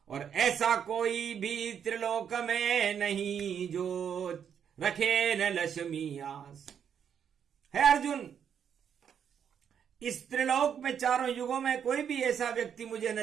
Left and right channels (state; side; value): quieter; left; 8.1 dB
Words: और ऐसा कोई भी त्रिलोक में नहीं जो रखे न लक्ष्मी आस। है अर्जुन, इस त्रिलोक में चारों युगों में कोई भी ऐसा व्यक्ति मुझे